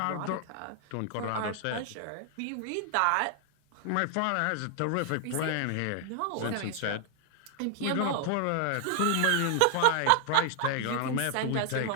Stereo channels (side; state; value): both; different; correlation 0.00